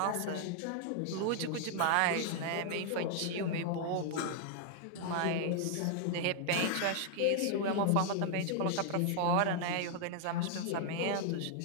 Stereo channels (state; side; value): different; both; correlation 0.00